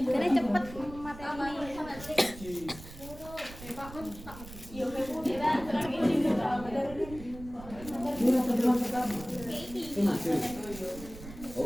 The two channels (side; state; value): right; noise; rumble, 15 dB below the sound